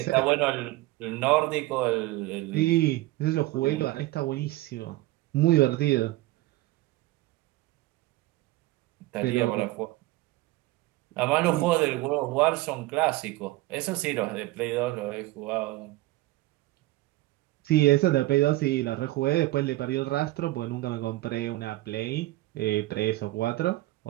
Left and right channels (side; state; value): left; quieter; 18.4 dB